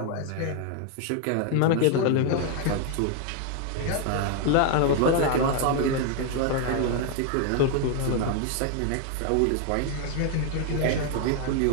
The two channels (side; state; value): both; different; correlation 0.01